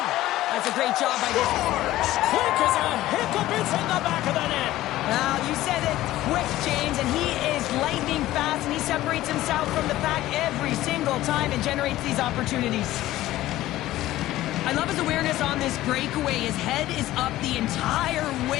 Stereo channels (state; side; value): quieter; right; 15.4 dB